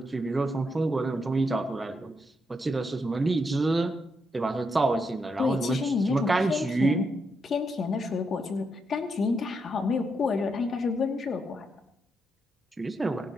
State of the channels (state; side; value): normal; both; correlation 0.81